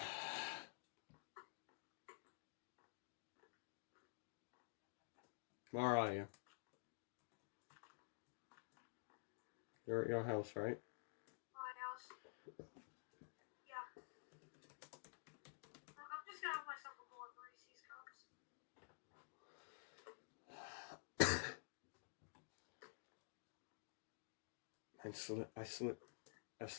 Where are you? You're at your house, right? My house. Yeah. I'm just gonna have myself a bowl of Reese's cups. I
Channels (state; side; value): silent; right; digital silence